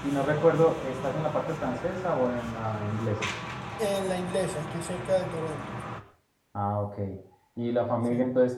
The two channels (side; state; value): both; identical; correlation 1.00